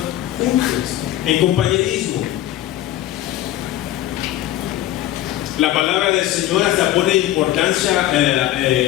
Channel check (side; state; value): right; quieter; 13.8 dB